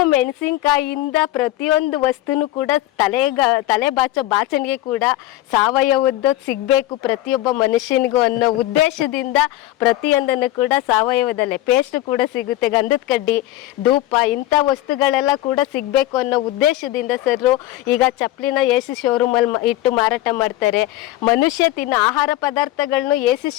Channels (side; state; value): right; quieter; 15.5 dB